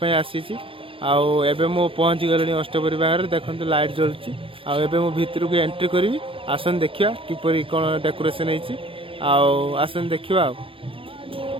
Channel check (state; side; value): late; left; 0.26 ms